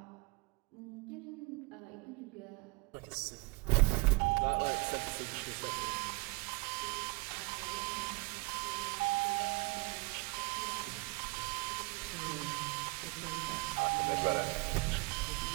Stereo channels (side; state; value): left; quieter; 27.8 dB